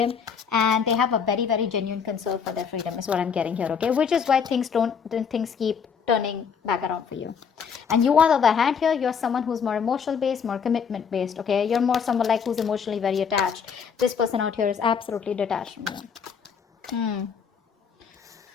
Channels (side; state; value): right; quieter; 6.7 dB